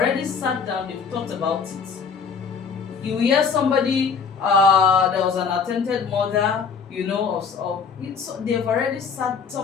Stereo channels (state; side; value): quieter; right; 5.8 dB